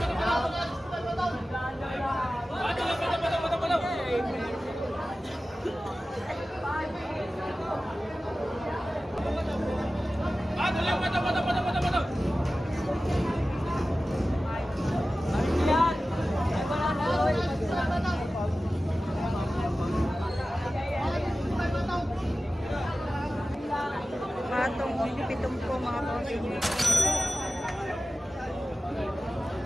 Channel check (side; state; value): both; normal; correlation 0.95